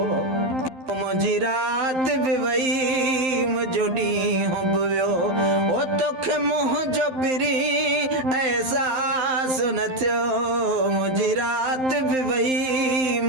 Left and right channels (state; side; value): late; left; 12 ms